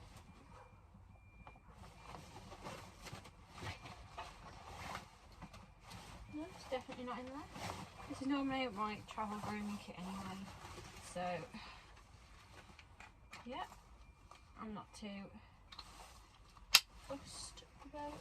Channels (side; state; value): both; identical; correlation 1.00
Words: No, it's definitely not in there. This is normally my travel grooming kit anyway. So, yeah, I'm not too fussed about